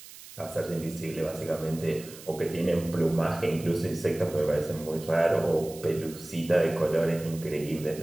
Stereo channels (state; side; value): noise; right; hiss, 17 dB below the sound